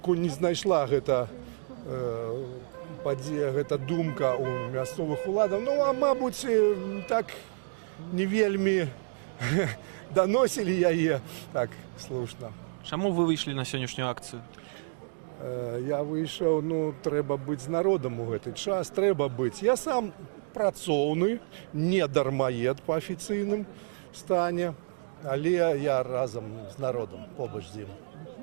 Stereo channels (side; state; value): left; silent; digital silence